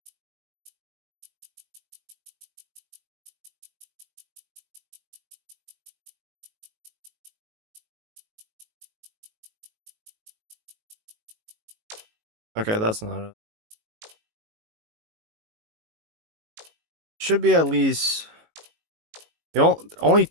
Okay, that's not it. Should be at least only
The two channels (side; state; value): left; late; 18 ms